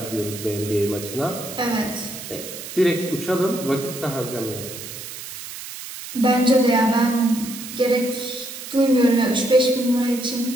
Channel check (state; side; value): noise; right; hiss, 11 dB below the sound